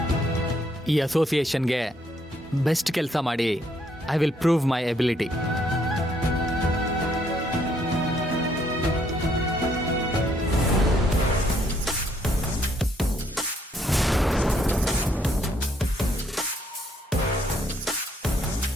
ಈ ಅಸೋಸಿಯೇಷನ್ಗೆ ಬೆಸ್ಟ್ ಕೆಲಸ ಮಾಡಿ I will prove my ability.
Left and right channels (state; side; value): normal; both; correlation 0.70